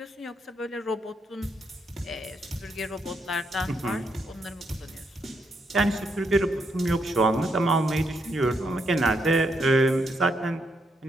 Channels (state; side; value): normal; both; correlation 0.78